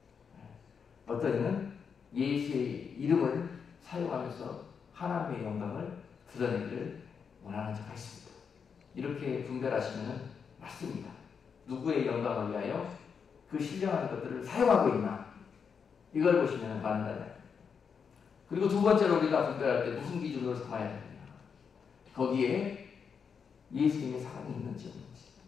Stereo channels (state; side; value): quieter; right; 6.4 dB